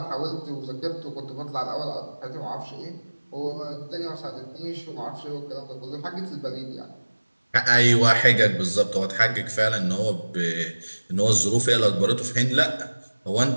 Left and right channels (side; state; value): both; inverted; correlation -1.00